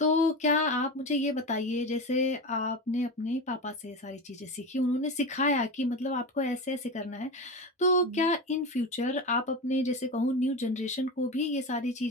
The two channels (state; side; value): normal; both; correlation 0.23